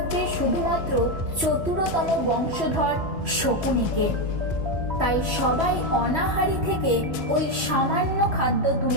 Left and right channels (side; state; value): left; late; 3.1 ms